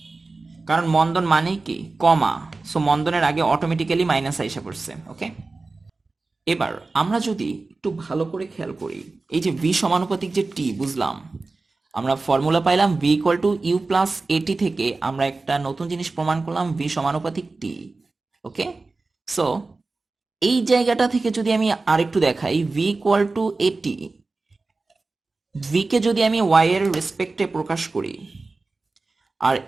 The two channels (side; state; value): left; quieter; 3.6 dB